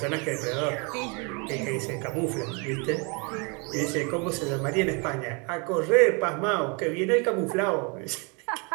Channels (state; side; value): quieter; left; 32.3 dB